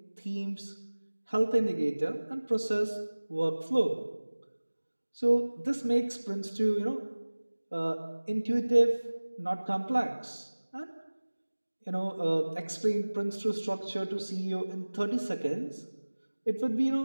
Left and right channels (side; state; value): both; inverted; correlation -1.00